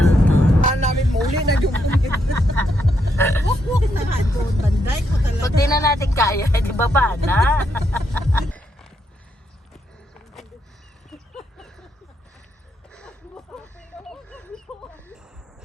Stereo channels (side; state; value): both; normal; correlation 0.78